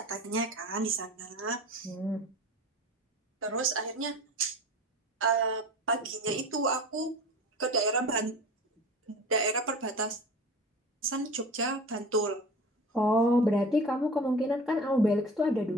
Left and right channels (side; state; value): both; normal; correlation 0.37